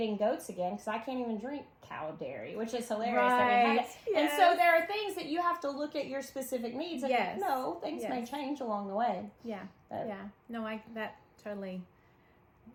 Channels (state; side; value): identical; both; correlation 1.00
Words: goats again because I can't even drink cow dairy, which is hilarious. Right. And so there are things that you have to look at your specific needs. And things may change along the way. Yeah. No, that totally